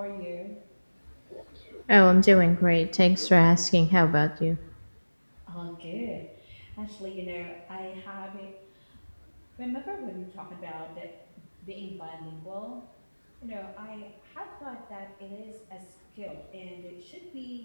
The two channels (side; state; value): both; inverted; correlation -1.00